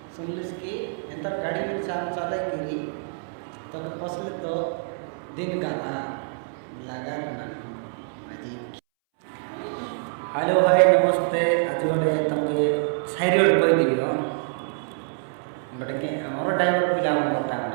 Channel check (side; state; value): left; silent; 61 dB below the other